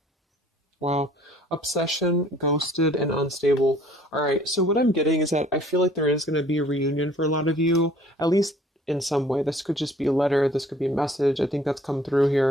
Wow. Obsession, ghosted, and unstable. All right. So what I'm getting is that I feel like there is going to be a reunion for a lot of you, at least in some way. This could just be a letter. This could be a message. I think that's come through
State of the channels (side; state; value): both; normal; correlation 0.55